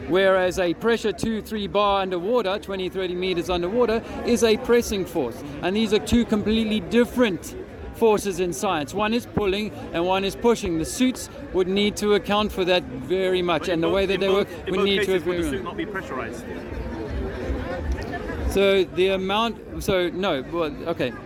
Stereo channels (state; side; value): identical; both; correlation 1.00